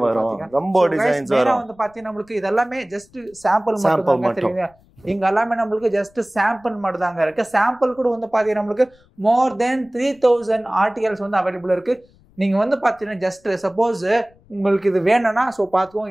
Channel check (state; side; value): noise; left; rumble, 30 dB below the sound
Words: வரும், ரொம்ப டிசைன்ஸ் வரும். வந்து பாத்தீங்கன்னா நமக்கு இதெல்லாம் ஜஸ்ட் சாம்பிள் மட்டும் தான் தெரியுங்க. இங்க எல்லாமே நமக்கு ஜஸ்ட் சாம்பிள் மட்டும் தாங்க இருக்கு. சாம்பிள் கூட வந்து பாத்தீங்கன்னா நமக்கு மோர் தென் 3000 ஆர்டிகல்ஸ் வந்து அவைலபிள் இருக்கு. நீங்க வந்து பாத்தீங்கன்னா ஜஸ்ட் சப்போஸ் உங்களுக்கு இது வேணும்னா சோ